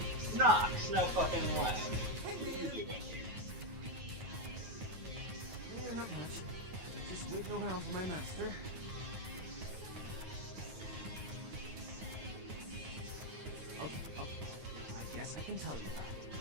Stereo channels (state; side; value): late; left; 9.3 ms